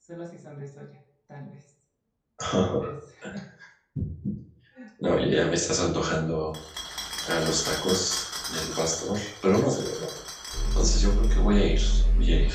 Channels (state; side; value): identical; both; correlation 1.00